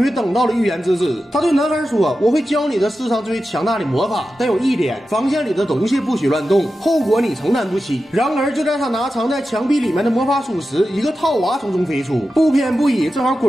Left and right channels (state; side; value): normal; both; correlation 0.92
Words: 于等到了预言之子。他对男孩说：“我会教你的世上最强大的魔法，但有一点，房间里的东西不许乱动，后果你承担不起。”然而就在他拿藏在墙壁里面的魔法书时，一个套娃从中飞出，不偏不倚，正好